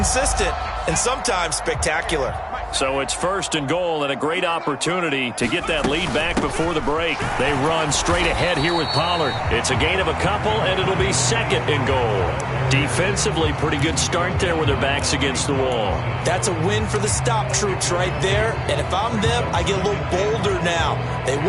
and sometimes spectacular. So it's 1st and goal and a great opportunity to get that lead back before the break. They run straight ahead here with Pollard. It's a gain of a couple, and it'll be 2nd and goal. Defensively, pretty good start there with their backs against the wall. That's a win for the stop troops right there. And if I'm them, I get a little bolder now. They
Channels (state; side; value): identical; both; correlation 1.00